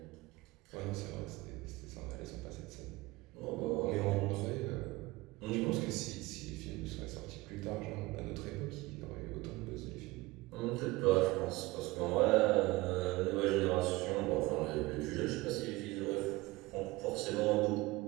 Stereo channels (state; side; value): quieter; left; 20.8 dB